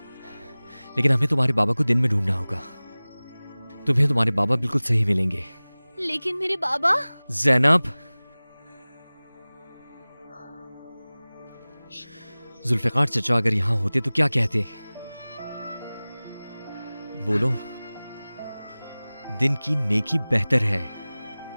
लेकिन हमें तुम्हारे बाबा को दिन में ढूंढना होगा। तुम्हें तुम्हारे बाबा बिल्कुल सही मिलेंगे। लेकिन मेरे बाबा। ज़ैनब, जुल्फ़िकार चचा अगर यहां होते तो क्या कहते? बोलो। दिन की नेकी बेहतर है।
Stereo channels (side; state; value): both; inverted; correlation -0.99